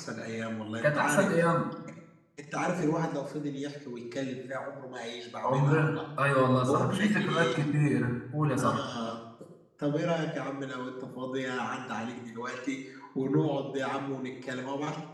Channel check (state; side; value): identical; both; correlation 1.00